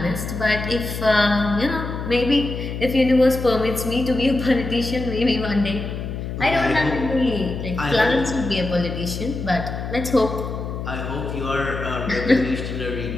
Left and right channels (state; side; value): noise; left; hum, 6 dB below the sound